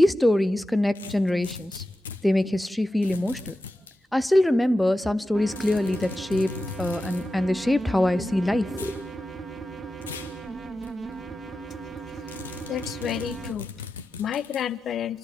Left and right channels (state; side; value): normal; both; correlation 0.91